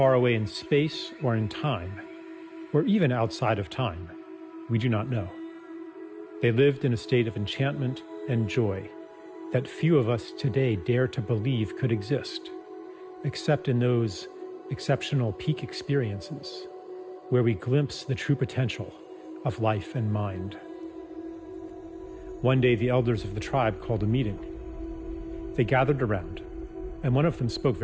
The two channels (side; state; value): both; identical; correlation 1.00